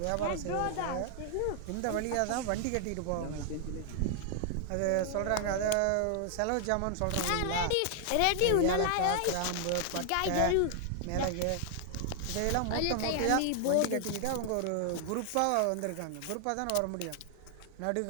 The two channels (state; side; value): different; both; correlation 0.00